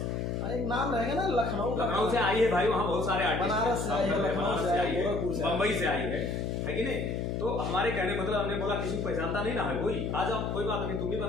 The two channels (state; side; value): noise; left; hum, 1 dB below the sound